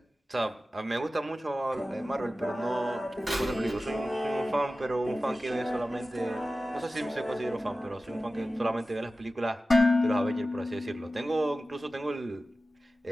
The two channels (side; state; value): both; normal; correlation 0.95